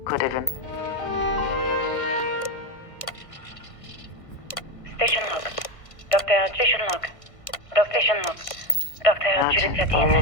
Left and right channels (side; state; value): right; late; 1.5 ms